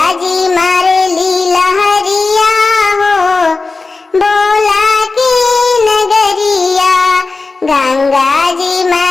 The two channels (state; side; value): quieter; right; 3.8 dB